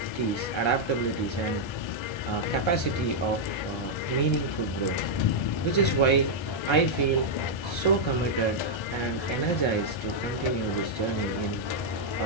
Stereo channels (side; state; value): right; late; 1.3 ms